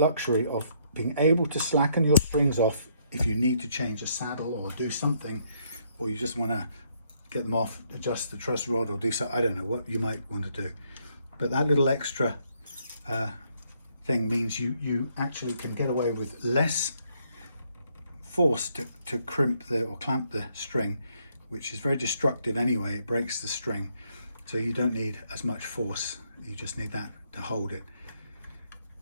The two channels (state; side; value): inverted; both; correlation -0.71